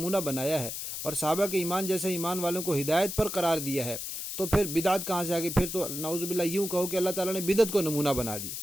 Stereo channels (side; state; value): left; noise; hiss, 6 dB below the sound